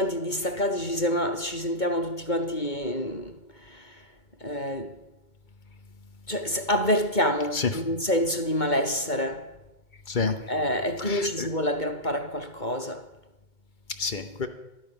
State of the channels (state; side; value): late; right; 2.2 ms